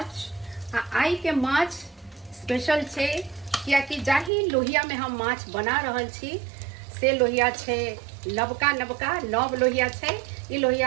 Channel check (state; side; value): drops out; left; at 4.3 s